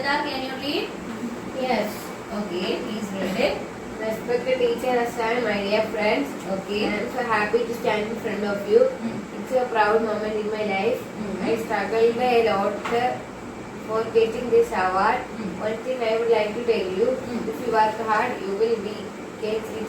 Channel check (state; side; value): identical; both; correlation 1.00